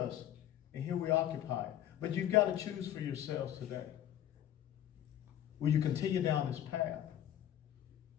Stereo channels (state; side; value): quieter; right; 11.5 dB